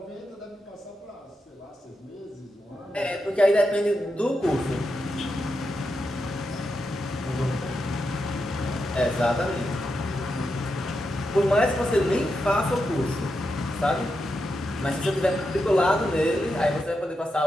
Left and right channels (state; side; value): normal; both; correlation 0.86